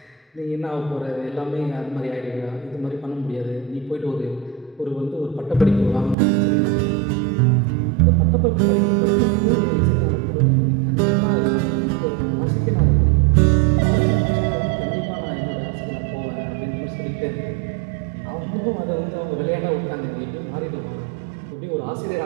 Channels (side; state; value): left; drops out; at 6.2 s